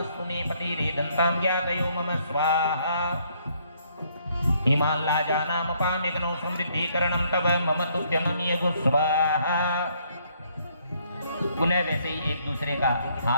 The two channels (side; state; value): both; inverted; correlation -0.68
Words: मे पतिरे दन्तां ज्ञातयो मम स्वाहा। इमान् लाजानामपाम्यग्नौ समृद्धिकरणं तव मम तुभ्यमनियगु स्वाहा। पुनः वैसे ही एक दूसरे का